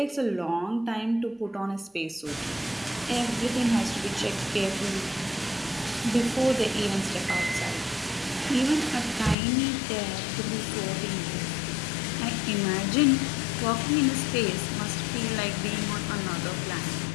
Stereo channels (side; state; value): right; drops out; at 9.3 s